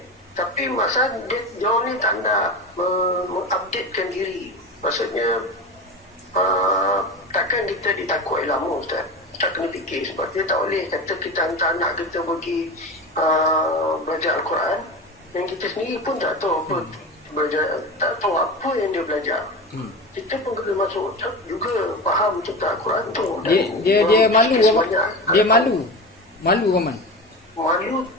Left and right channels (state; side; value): normal; both; correlation 0.26